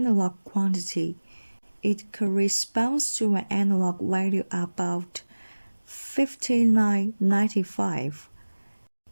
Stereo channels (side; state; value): both; inverted; correlation -1.00